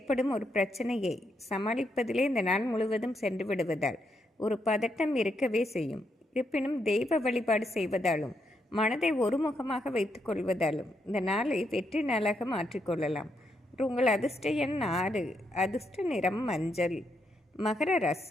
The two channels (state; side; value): normal; both; correlation 0.79